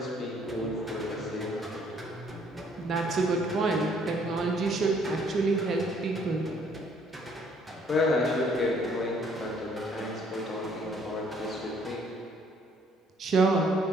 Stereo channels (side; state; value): both; normal; correlation 0.63